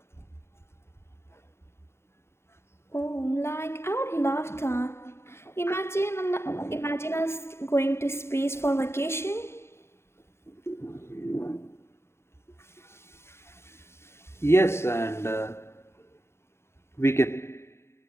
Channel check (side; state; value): right; late; 0.12 ms